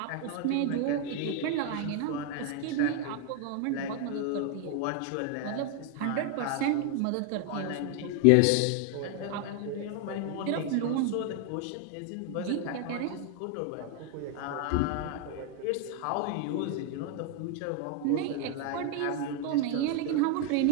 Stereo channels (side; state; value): both; different; correlation 0.00